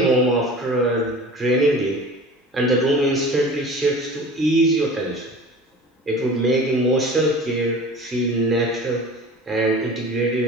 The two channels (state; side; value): normal; both; correlation 0.40